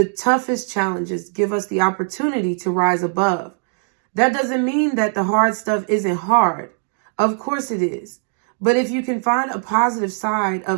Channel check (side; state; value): left; silent; 62 dB below the other